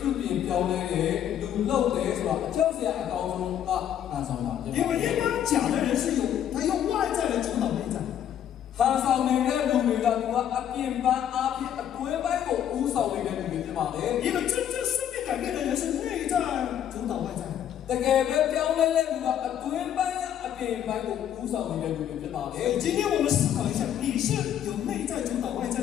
ြုပြင်ပြောင်းလဲတယ်လူလောက်တယ်ဆိုတာအကြောက်စရာအကောင်းဆုံးကဟန်ဆောင်တာဖြစ် 因 ပါ 为一般假的人是他用外在来主导内在， ဟန်ဆောင်နေတဲ့လူတွေကသူကအပြင်ပန်းအပြင်အတွင်းပိုင်းကိုဥဆောင်နေတဲ့လူတွေဖြစ်ပါလေ 因为真正生命改变的人是内在主导外在。 တကယ်ပဲပြောင်းလဲတဲ့လူကအတွင်းပိုင်းကအပြင်ပိုင်းကိုဥဆောင်နေတဲ့လူတွေဖြစ်ပါလေ 今天我们思考一下，你是有内在主导外在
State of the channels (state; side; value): quieter; right; 10.1 dB